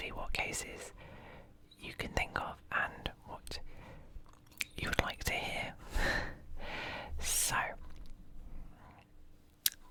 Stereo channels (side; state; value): both; identical; correlation 1.00